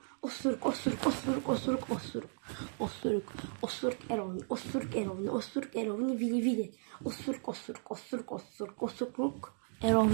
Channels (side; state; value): left; silent; 54 dB below the other